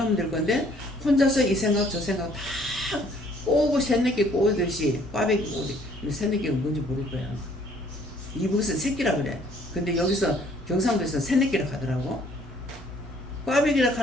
될 건데 혼자서 이 생각 저 생각 다 꼬고 새내기 꼬듯이 꽈배기 꼬듯이 새내기가 뭔지 모를 거야. 이북에서 새끼라 그래. 근데 여기서 경상도에서 새내끼라 하더라고. 꽈배기라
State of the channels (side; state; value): both; normal; correlation 0.60